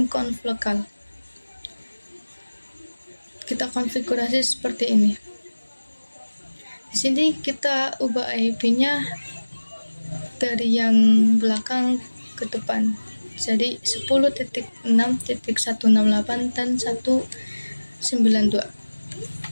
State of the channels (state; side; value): inverted; both; correlation -1.00